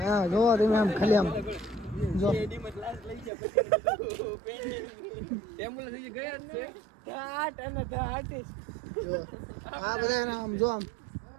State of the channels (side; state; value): left; drops out; at 3.3 s